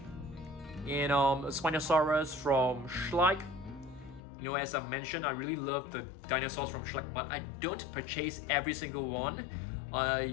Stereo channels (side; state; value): right; drops out; at 4.2 s